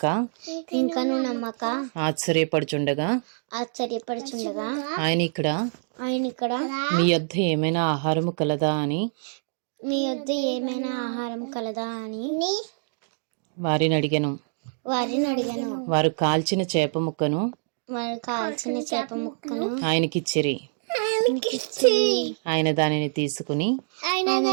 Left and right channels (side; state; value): left; silent; digital silence